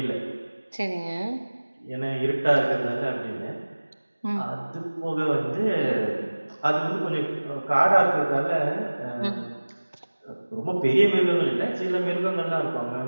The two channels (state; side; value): inverted; both; correlation -1.00